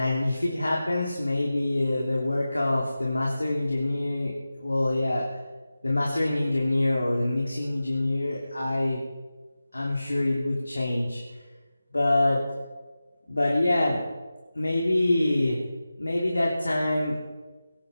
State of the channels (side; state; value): both; inverted; correlation -0.95